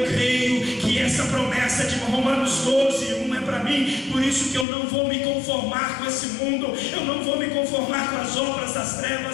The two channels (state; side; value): drops out; right; at 4.7 s